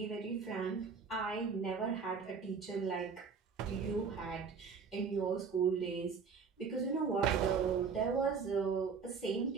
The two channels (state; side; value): quieter; left; 5.7 dB